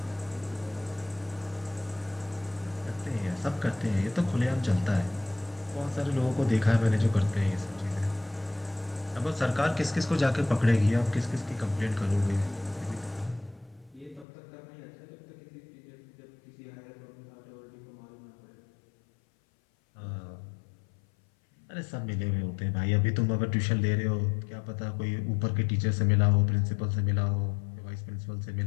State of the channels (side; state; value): right; drops out; at 14.2 s